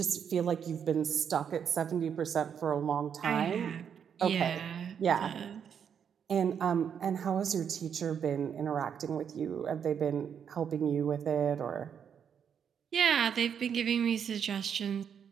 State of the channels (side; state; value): left; quieter; 7.8 dB